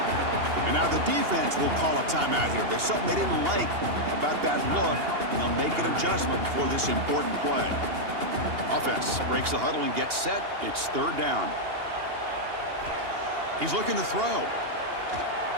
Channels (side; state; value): left; late; 2.8 ms